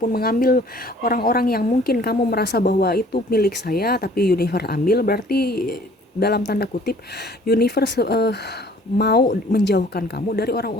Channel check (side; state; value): both; normal; correlation 0.54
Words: mengambil orang-orang yang mungkin kamu merasa bahwa itu milik saya, tapi universe ambil, berarti dalam tanda kutip universe mau menjauhkan kamu dari